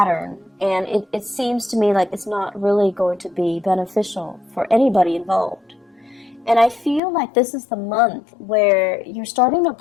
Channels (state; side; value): drops out; right; at 7.0 s